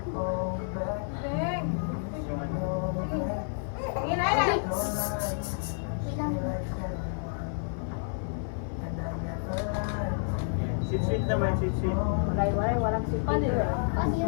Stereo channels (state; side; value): silent; right; 55 dB below the other